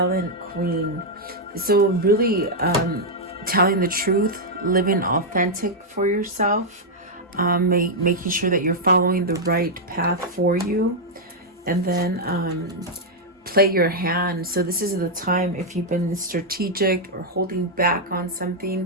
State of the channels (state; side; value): normal; both; correlation -0.03